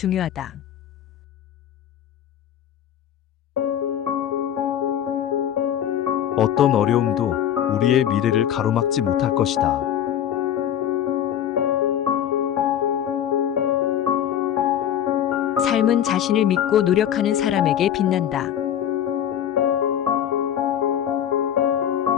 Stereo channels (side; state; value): right; quieter; 10.1 dB